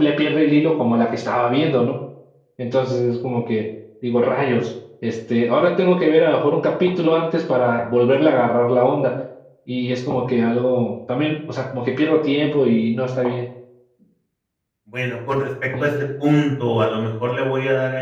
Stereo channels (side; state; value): both; identical; correlation 1.00